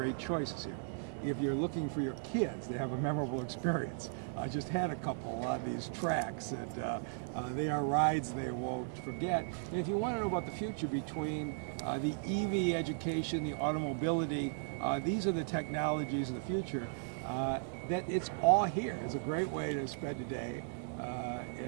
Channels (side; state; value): left; silent; digital silence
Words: choices here. If you're looking for your kids to have a memorable experience, I just had a couple on these tracks, and they are rides they won't forget. And if you want to know about the future between the EV education, the automobility, these are the technologies of the future. That it's all here. It's a great way to spend a day